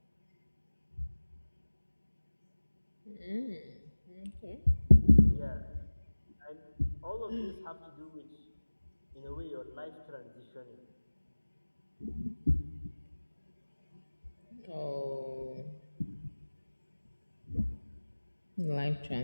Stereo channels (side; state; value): both; inverted; correlation -1.00